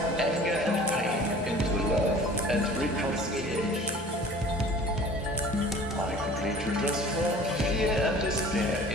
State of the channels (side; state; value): both; normal; correlation 0.46